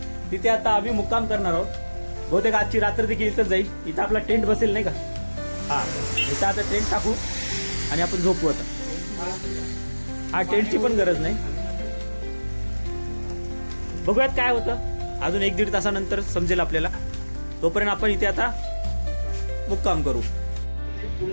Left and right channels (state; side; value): inverted; both; correlation -1.00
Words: तिथे आता आम्ही मुक्काम करणार आहोत. बहुतेक आजची रात्र देखील इथं जाईल. इथं आपला टेंट बसेल नाही का? हा, इथं आता टेंट टाकू आणि आपण झोपू. आता हा टेंटची पण गरज नाही. बघूयात काय होतं. अजून 1-1.5 तासानंतर समजेल आपल्याला. तोपर्यंत आपण इथे आता मुक्काम करू.